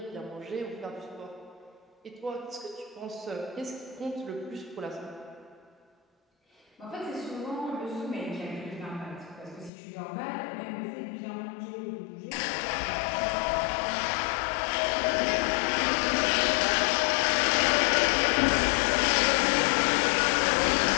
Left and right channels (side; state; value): right; drops out; at 9.7 s